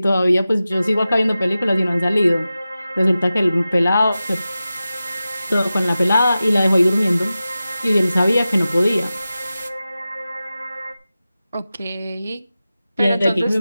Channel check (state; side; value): inverted; both; correlation -0.94